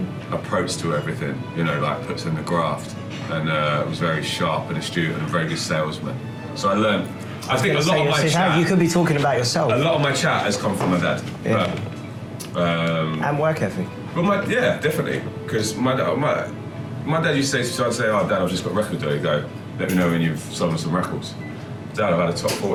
approach to everything, like puts in the graft, and was very sharp and astute and a very good salesman. So I learned, I think a lot of my chat, you could be talking about yourself. a lot of my chat has come from my dad. Yeah. And work ethic. But yeah, definitely, because my dad used to say, "Oh, Dad, I've just got a record deal." He'd go, "Let me know when you've sold some records." "Dad, I've had a top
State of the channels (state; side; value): identical; both; correlation 1.00